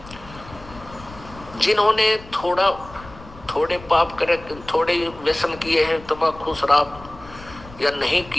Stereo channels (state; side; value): noise; left; rumble, 18 dB below the sound